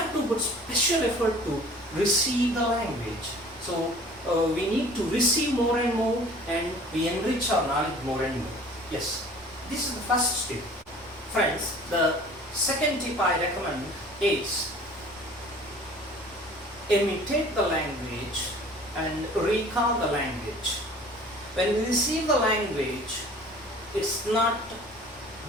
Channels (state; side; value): normal; both; correlation 0.47